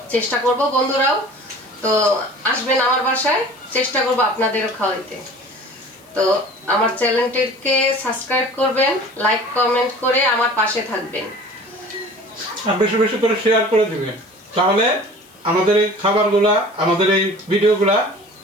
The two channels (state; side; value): noise; left; hiss, 28 dB below the sound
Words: চেষ্টা করব। বন্ধুরাও তো আসবেন আমার বাসায়, চেষ্টা করব আপনাদেরও খাওয়াইতে। তো আমার চ্যানেলটিকে সাবস্ক্রাইব করবেন, লাইক কমেন্ট করে আমার পাশে থাকবেন, আর বেশি বেশি করে শেয়ার করে দিবেন, তাহলে আমাদের এই খাবারগুলা, আমাদের এই ভিডিওগুলা